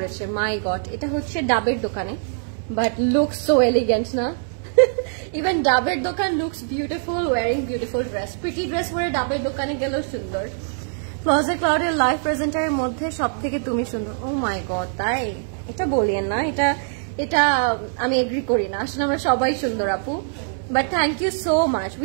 মাই গড। এটা হচ্ছে ডাবের দোকানে, বাট লুকস সো এলিগেন্ট না? ইভেন ডাবের দোকান looks beautiful wearing beautiful dress. Pretty dress পরে ডাবের দোকানে গেলেও সুন্দর। ক্লোজেট ক্লাউডের লাইভ প্রেজেন্টারের মধ্যে সব থেকে তুমি সুন্দর। ও মাই গড, তাই? এটা বলিয়েন না, এটা এটা আমি এগ্রি করি না। আসলে আমরা সবাই সুন্দর আপু, but thank you so much.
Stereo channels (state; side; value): silent; left; digital silence